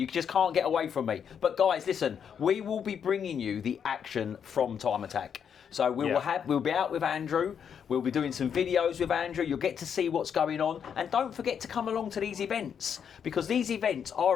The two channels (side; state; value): right; quieter; 7.7 dB